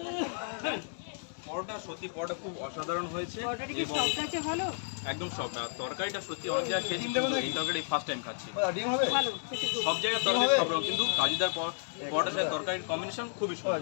পরোটা সত্যি পরোটা খুব অসাধারণ হয়েছে এবং ভালো একদম সফট। আর তরকারিটা সত্যি অনেক জায়গায় খেয়েছি, এই তরকারি ফার্স্ট টাইম খাচ্ছি। ডিম হবে? সব জায়গায় তরকারি সব রকম, কিন্তু কাজুদার পরোটার সাথে তরকারির কম্বিনেশন খুবই সুন্দর,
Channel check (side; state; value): right; silent; digital silence